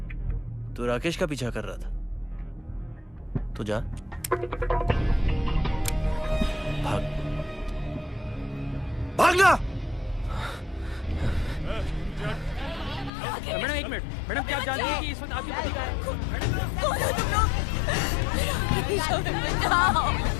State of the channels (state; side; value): drops out; right; at 13.1 s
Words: तू राकेश का पीछा कर रहा था। तो जा, भाग, भागना। मैडम एक मिनट, मैडम क्या आप जानती हैं कि इस वक्त आपकी पति कहाँ है? कौन हो तुम लोग?